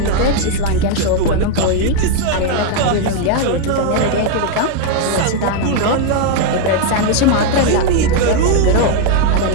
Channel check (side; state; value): both; different; correlation 0.00